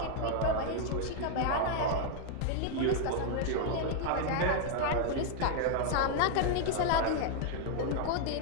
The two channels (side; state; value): both; different; correlation 0.00